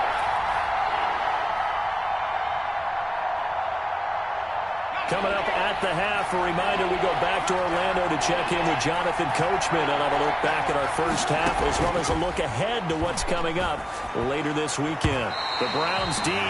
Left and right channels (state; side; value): identical; both; correlation 1.00